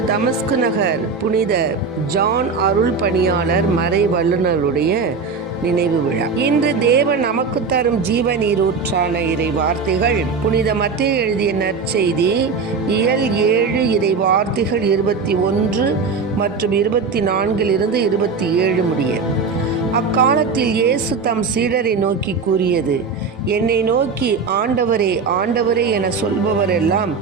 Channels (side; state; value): left; quieter; 4.9 dB